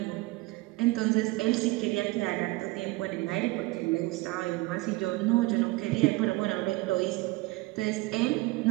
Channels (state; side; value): quieter; left; 21.6 dB